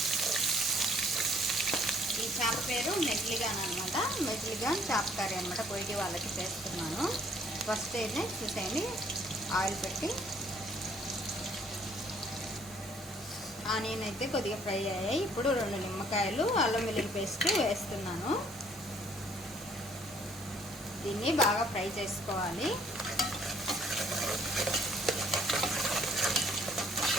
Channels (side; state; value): both; normal; correlation 0.62